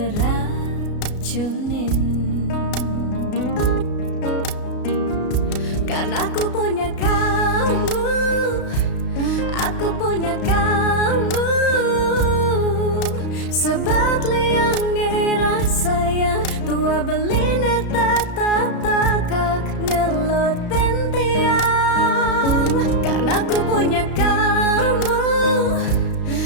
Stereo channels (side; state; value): right; late; 33 ms